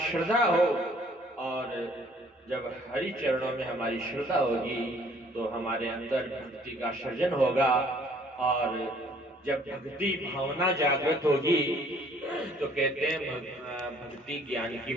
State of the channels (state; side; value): normal; both; correlation 0.59